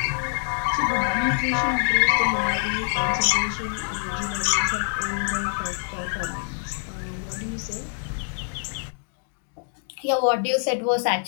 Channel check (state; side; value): silent; right; digital silence